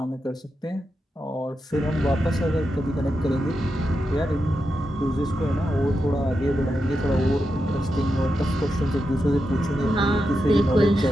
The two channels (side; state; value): both; normal; correlation 0.87